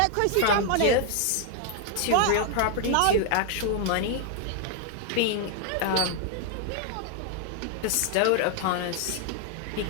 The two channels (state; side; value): different; both; correlation 0.00